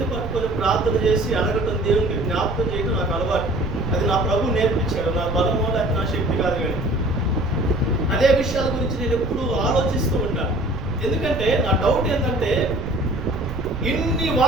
పట్టుకొని ప్రార్థన చేసి అడగటం, దేవునికి జ్ఞాపకం చేయడం నాకు అలవాటు. అది నా ప్రభు నేర్పించాడు. నా బలమో లేక నా శక్తి కాదు, కానీ అదే విషయాల గురించి నేను ఎప్పుడు ఆలోచిస్తూ ఉంటాను. ఎందుకంటే నా డౌట్ ఏంటంటే, ఇన్ని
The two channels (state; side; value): noise; right; rumble, 8 dB below the sound